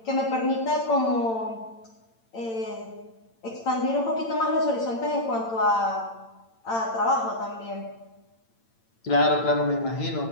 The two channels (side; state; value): right; late; 8.8 ms